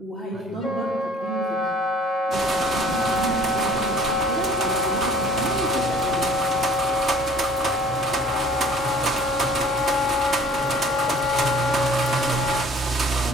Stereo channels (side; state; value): both; normal; correlation 0.52